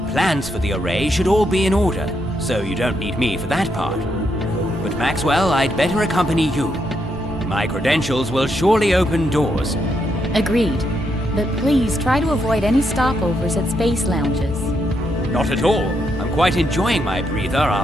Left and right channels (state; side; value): normal; both; correlation 0.79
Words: for the array should all be in order, so you don't need me for that part. But Maxwell, I'd better accompany you. My credentials will surely open doors. Agreed. But please try to avoid any stopovers at space lounges. Not at all. I'm quite enjoying my breather